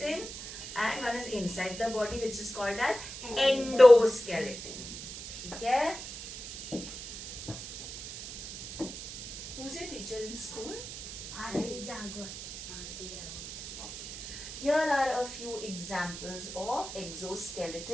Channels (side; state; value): right; noise; hiss, 10 dB below the sound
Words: and one is inside the body, which is called as endoskeleton. Okay? Who's your teacher in school? Aarti Jagwat. Here are a few examples of